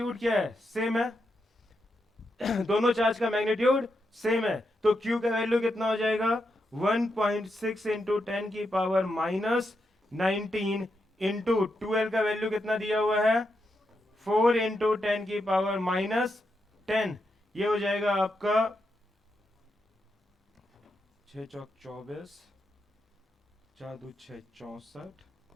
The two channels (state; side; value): normal; both; correlation 0.84